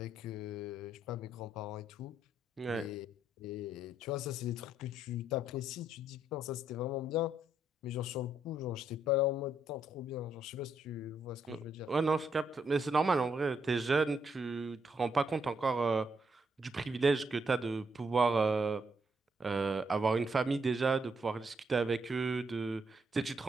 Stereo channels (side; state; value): both; normal; correlation 0.75